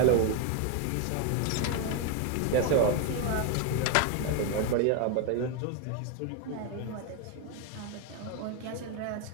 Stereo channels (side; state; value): both; different; correlation 0.01